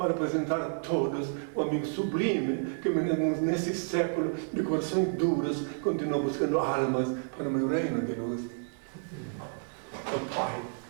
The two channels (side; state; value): left; silent; digital silence